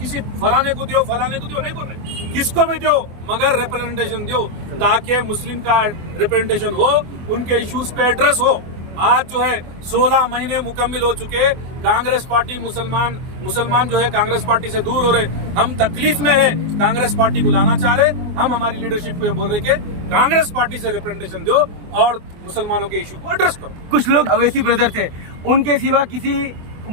फलाने को दो नहीं बोल रहे, किसको भी दो, मगर रिप्रेजेंटेशन दो, ताकि मुस्लिम का रिप्रेजेंटेशन हो, उनके इश्यूज पे एड्रेस हो। आज जो है 16 महीने मुकम्मिल हो चुके, कांग्रेस पार्टी मुसलमान जो है कांग्रेस पार्टी से दूर हो रहे, हम तकलीफ में है, कांग्रेस पार्टी को लाना चाह रहे। हम हमारी लीडरशिप को ये बोल रहे कि कांग्रेस पार्टी से रिप्रेजेंटेशन दो और मुसलमानों के इशू को एड्रेस करो। कुछ लोग अवैसी ब्रदर थे, उनके सिवा किसी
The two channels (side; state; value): left; late; 24 ms